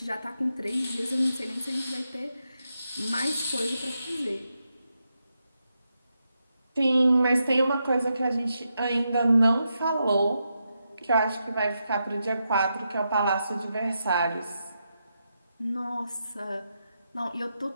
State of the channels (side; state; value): both; inverted; correlation -0.85